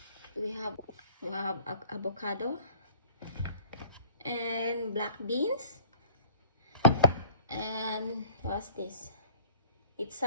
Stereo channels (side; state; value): both; inverted; correlation -0.51